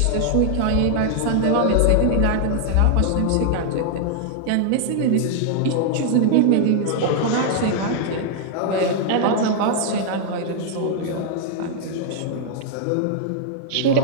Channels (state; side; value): different; both; correlation 0.00